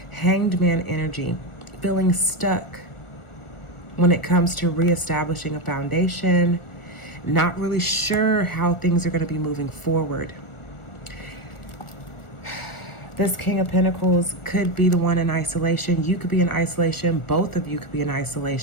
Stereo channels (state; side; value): late; right; 1.4 ms